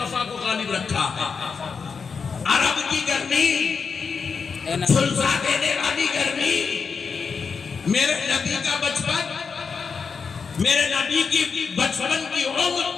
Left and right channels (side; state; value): right; quieter; 5.5 dB